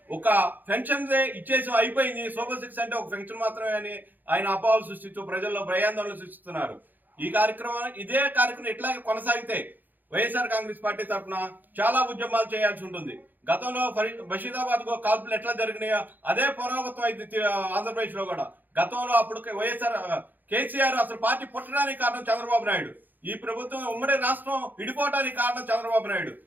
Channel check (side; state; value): left; late; 0.086 ms